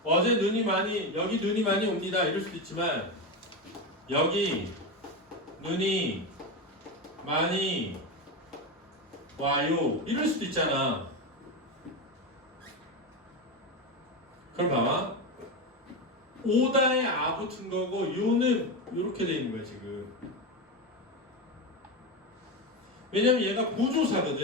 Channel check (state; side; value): normal; both; correlation 0.16